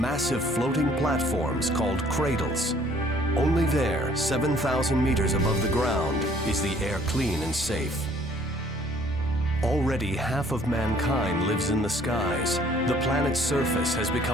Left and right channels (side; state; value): both; normal; correlation 0.59